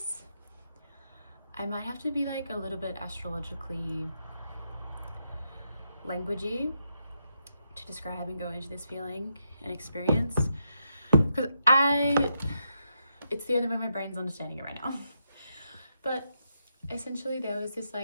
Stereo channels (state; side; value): inverted; both; correlation -0.83